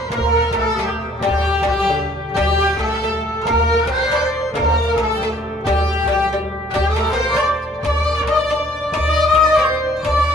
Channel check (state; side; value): normal; both; correlation 0.61